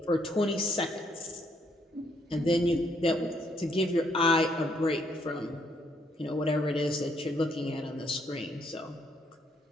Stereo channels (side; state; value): both; normal; correlation 0.71